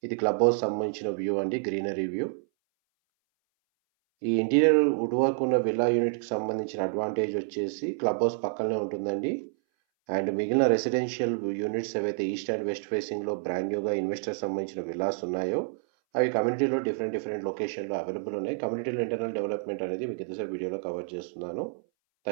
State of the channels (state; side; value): silent; left; 58 dB below the other